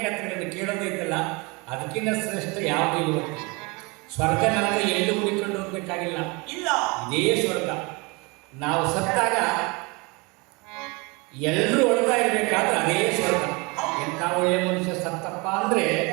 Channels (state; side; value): quieter; left; 27.6 dB